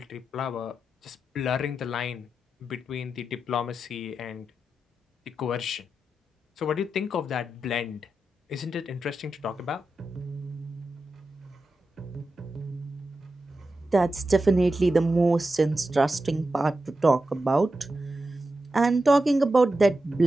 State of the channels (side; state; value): both; normal; correlation 0.90